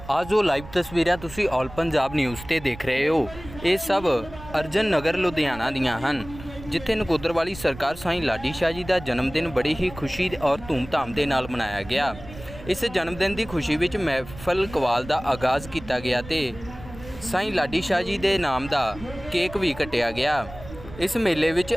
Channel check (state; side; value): noise; right; rumble, 15 dB below the sound